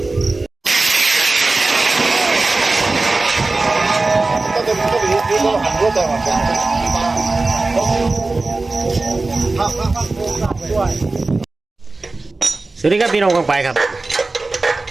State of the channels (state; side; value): quieter; left; 3.4 dB